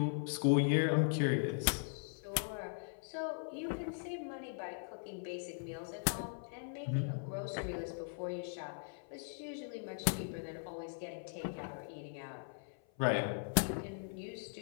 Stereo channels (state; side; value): silent; right; 51 dB below the other